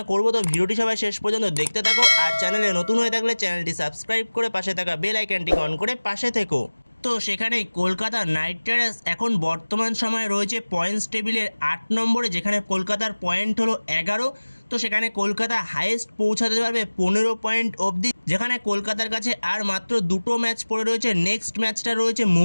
করব। তো ভিডিওটি সবাই শেষ পর্যন্ত দেখতে থাকো, আর চ্যানেলে নতুন হয়ে থাকলে চ্যানেলটি সাবস্ক্রাইব করে পাশে থাকা বেল আইকনটি অন করে পাশে থেকো। তো সেখানে কলকাতা নাইট রাইডার্স এখন বর্তমান সময়ে রয়েছে পয়েন্টস টেবিলের 8 নম্বরে, যেখানে কলকাতার পয়েন্ট হলো 11। তো সেখানে কলকাতা হাইয়েস্ট পৌঁছাতে পারবে 15 পয়েন্ট অবধি, যেখানে কলকাতার কাছে আর মাত্র দুটো ম্যাচ পড়ে রয়েছে। নেক্সট ম্যাচটা রয়েছে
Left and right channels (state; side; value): inverted; both; correlation -1.00